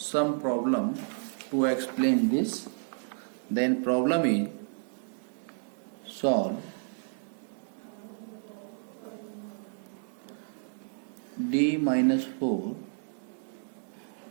problem to explain this, then problem is solve d minus 4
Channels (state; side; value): silent; left; 57 dB below the other